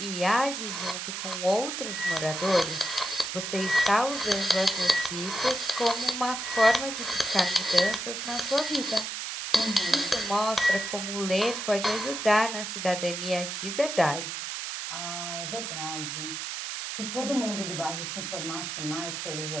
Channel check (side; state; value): right; noise; hiss, 5 dB below the sound